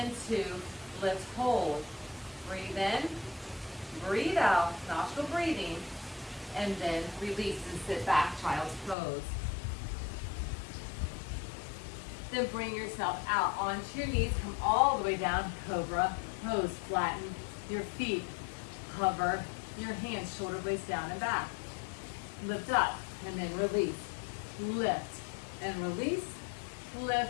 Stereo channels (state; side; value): drops out; right; at 9.0 s